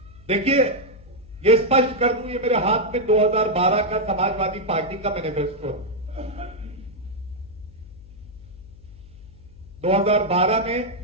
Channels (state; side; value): noise; left; hum, 20 dB below the sound